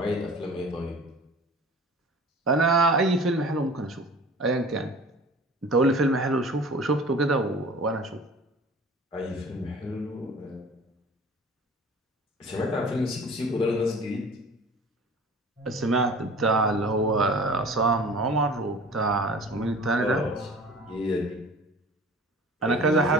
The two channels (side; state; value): both; normal; correlation 0.43